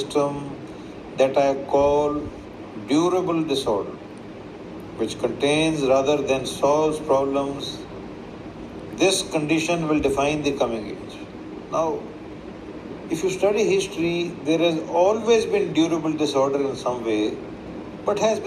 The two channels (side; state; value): both; identical; correlation 1.00